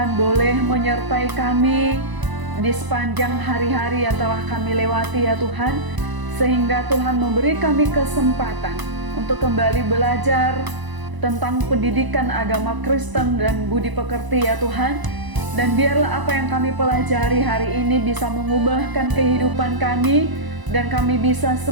boleh menyertai kami di sepanjang hari-hari yang telah kami lewati ya Tuhan. Sehingga Tuhan memberi kami kesempatan untuk kembali belajar tentang pendidikan agama Kristen dan budi pekerti ya Tuhan. Dan biarlah apa yang kami pelajari hari ini bisa mengubahkan kehidupan kami, dan kami bisa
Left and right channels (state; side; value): late; left; 1.0 ms